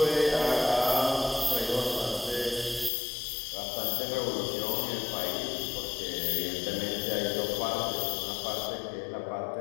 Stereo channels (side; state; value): right; drops out; at 2.9 s